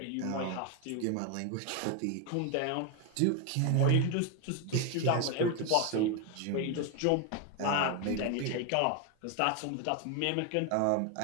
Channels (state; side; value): different; both; correlation 0.01